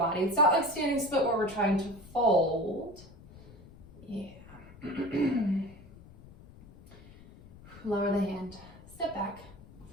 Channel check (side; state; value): left; noise; rumble, 20 dB below the sound